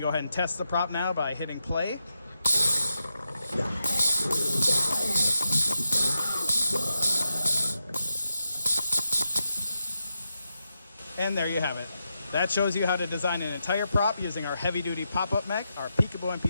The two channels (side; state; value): both; inverted; correlation -0.87